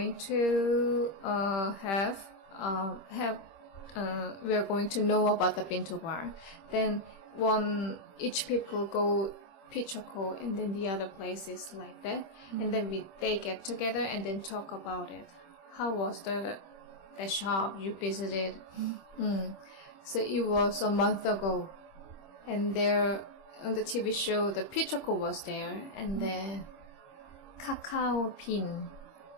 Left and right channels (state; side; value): late; right; 26 ms